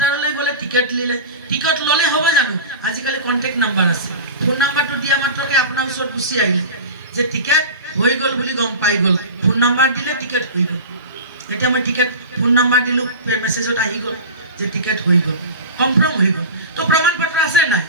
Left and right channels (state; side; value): inverted; both; correlation -0.30